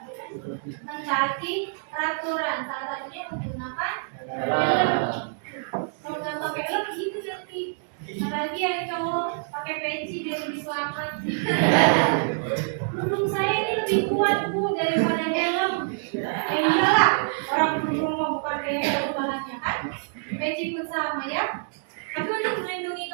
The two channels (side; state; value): left; silent; digital silence